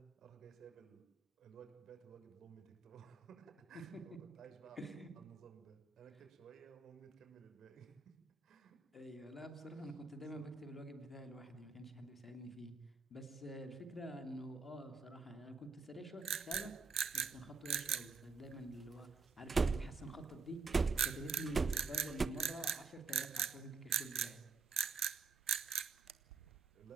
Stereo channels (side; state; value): left; quieter; 4.6 dB